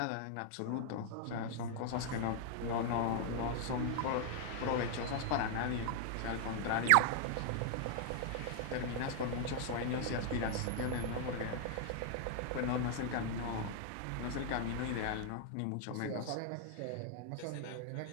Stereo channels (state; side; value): different; both; correlation 0.00